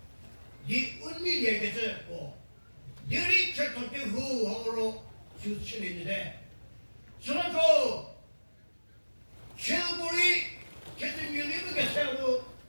네 은밀 얘기해서 뭐 너리 철통기 후하로 주치는데 저런도 최고리 계속 밀리는 게 세우고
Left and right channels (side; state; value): both; inverted; correlation -1.00